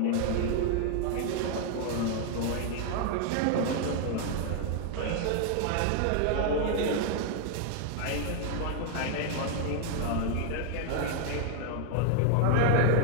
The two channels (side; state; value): both; different; correlation 0.00